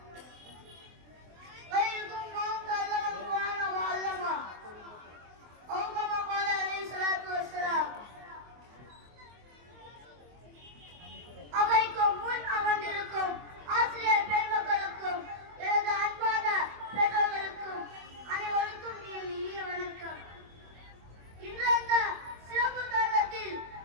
خيركم من تعلم القرآن وعلمه أو كما قال عليه الصلاة والسلام அவைக்கும் முன் அமர்ந்திருக்கும் ஆசிரியர் பெருமக்களுக்கும் எனது அன்பான பெற்றோர்களுக்கும் அனைவருக்கும் இனிய வணக்கம். இன்று அந்த சிறப்பு தருணத்தில்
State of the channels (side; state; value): left; late; 24 ms